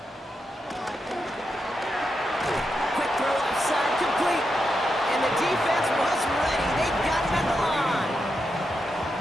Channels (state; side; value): normal; both; correlation 0.86